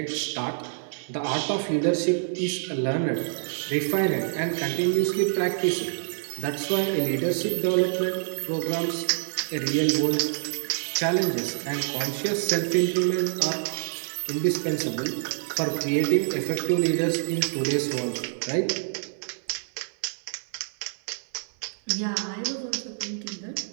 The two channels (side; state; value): left; silent; 58 dB below the other